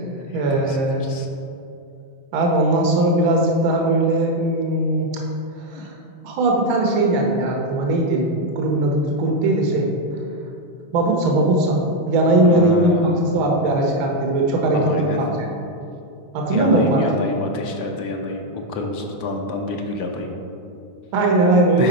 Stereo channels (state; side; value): late; left; 3.6 ms